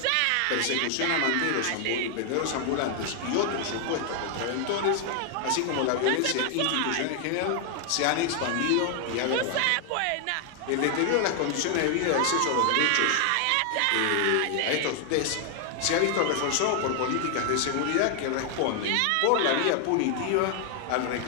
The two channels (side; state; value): both; different; correlation 0.00